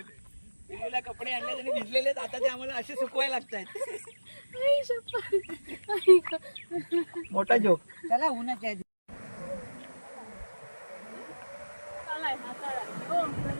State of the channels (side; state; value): both; inverted; correlation -1.00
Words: पिलूला कपडे आणले आणि भिजलेले, आता ते आम्हाला असे सुकवायला लागतात. मोठा जोक. चला उन्हाच्या